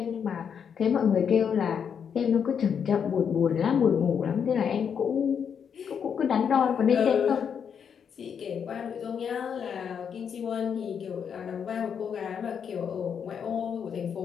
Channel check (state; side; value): quieter; right; 7.4 dB